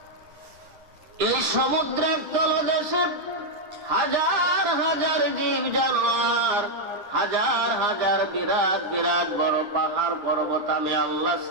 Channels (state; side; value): late; left; 9.8 ms